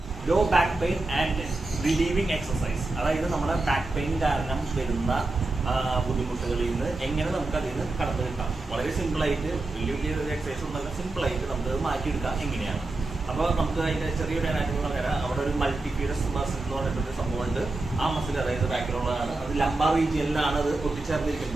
Law back pain and relieving exercise. അതായത് നമ്മുടെ back pain കാരണം വരുന്ന ബുദ്ധിമുട്ടുകളിൽ നിന്ന് എങ്ങനെ നമുക്ക് അതിൽ നിന്ന് കടന്നു കിട്ടാം. വളരെ സിമ്പിളായിട്ട്, വലിയ വലിയ എക്സസൈസ് ഒന്നല്ല, സിമ്പിളായിട്ട് നമുക്ക് മാറ്റിയെടുക്കാം എങ്ങനെയാണ്. അപ്പോൾ നമുക്ക് അതിൻ്റെ ചെറിയൊരു അനാറ്റമി പറഞ്ഞാൽ അവിടെ ഒരു മൾട്ടിഫ്യൂരസ് മസിൽ എന്ന് പറഞ്ഞിട്ടൊരു സംഭവമുണ്ട്. ആ മസിൽ അതായത് ബാക്കിലുള്ളതാണ്, അത് ലംബാർ റീജിയനിലാണ് അത്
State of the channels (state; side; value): quieter; left; 3.1 dB